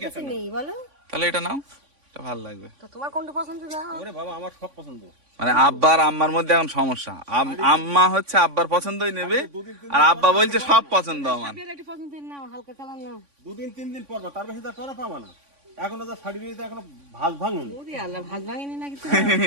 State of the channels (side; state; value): left; late; 3.5 ms